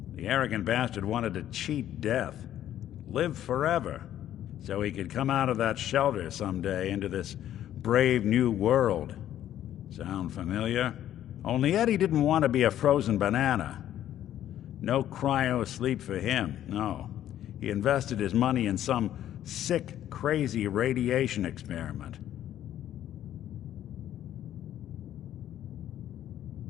The arrogant bastard wanted to cheat death, live forever, so he could come out of that shelter someday into this brave new world. Sound familiar? Only Eddie didn't want to be a frozen banana. No cryo sleep for him, no. He invested his money in some sick, crazy radiation experiment.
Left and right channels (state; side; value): quieter; right; 11.7 dB